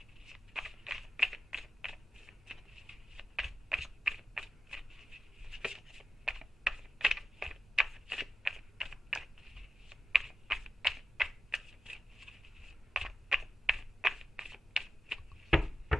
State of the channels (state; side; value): normal; both; correlation 0.92